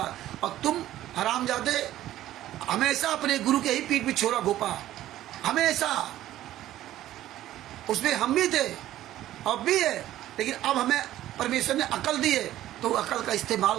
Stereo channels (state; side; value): quieter; left; 13.7 dB